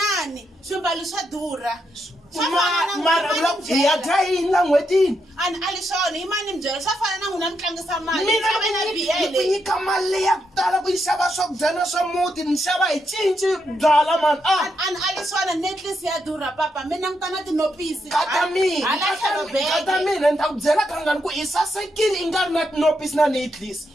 swimbalo swa durha. Mara vula ku ya dayini la n'hwetini. Ali swona yi mani mi byela swa fana na n'wina mi tlangisa mali. Mina ni nyika mali ya ku tala ku yi xava swakudya na swa muti ni xava hi cinci byala mani. Ali swona necklace ya durha papa mina ni tana tinopisi. Kata mina ni ta ku byela kangani ku i sasekile i nga ri na tinopisi na necklace.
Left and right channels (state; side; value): normal; both; correlation 0.81